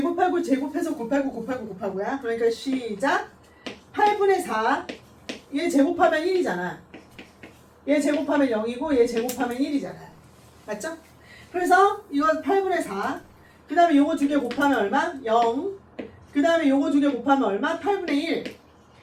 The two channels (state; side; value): identical; both; correlation 1.00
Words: 곱하고야. 그러니까 시작. 8분의 4. 얘 제곱하면 1이잖아. 얘 제곱하면 0이고 얘 제곱하면 1이잖아. 맞죠? 그래서 이거 8분의 4. 그 다음에 요거 두 개 곱하면 얼마? 0. 그 다음에 요거 두 개 곱하면 얼마? 8분의 1.